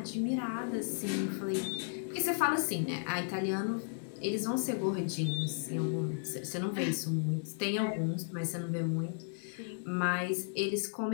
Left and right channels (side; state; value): right; silent; 55 dB below the other